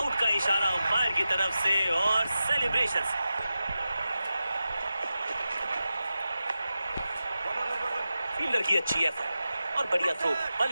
का इशारा अंपायर की तरफ से और सेलिब्रेशंस। फील्डर की अच्छी एफर्ट और बढ़िया थ्रो,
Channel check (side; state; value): both; inverted; correlation -0.92